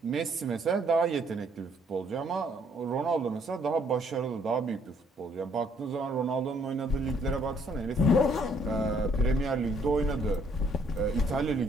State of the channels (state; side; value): normal; both; correlation 0.66